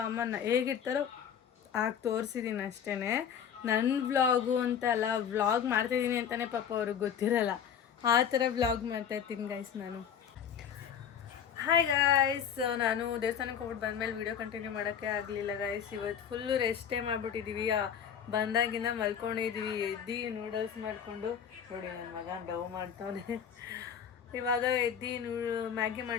ಅಮ್ಮ ಹೇಗಿರ್ತಾರೋ ಆಗ ತೋರಿಸಿದ್ದೀನಿ ಅಷ್ಟೇ. ನನ್ನ ವ್ಲಾಗು ಅಂತ ಅಲ್ಲ, ವ್ಲಾಗ್ ಮಾಡ್ತಾಯಿದ್ದೀನಿ ಅಂತಲೇ ಪಾಪ ಅವ್ರಿಗೆ ಗೊತ್ತಿರಲ್ಲ. ಆ ಥರ ವ್ಲಾಗ್ ಮಾಡ್ತಾಯಿರ್ತೀನಿ ಗೈಸ್ ನಾನು. ಹಾಯ್ ಗಾಯ್ಸ್, ನಾನು ದೇವಸ್ಥಾನಕ್ಕೆ ಹೋಗ್ಬಿಟ್ಟು ಬಂದಮೇಲೆ ವೀಡಿಯೋ ಕಂಟಿನ್ಯೂ ಮಾಡೋಕ್ಕೆ ಆಗಲಿಲ್ಲ ಗೈಸ್. ಇವತ್ತು ಫುಲ್ಲು ರೆಸ್ಟೇ ಮಾಡಿಬಿಟ್ಟಿದ್ದೀವಿ. ಬಂದಾಗಿಂದ ಮಲ್ಕೊಂಡಿದ್ದೀವಿ. ಎದ್ದು ನೂಡಲ್ಸ್ ಮಾಡಿಕೊಂಡು ನೋಡಿ ನನ್ನ ಮಗ ಡವ್ ಮಾಡ್ತವನೆ. ಇವಾಗ ಎದ್ದು ಮ್ಯಾಗಿ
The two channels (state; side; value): quieter; right; 8.2 dB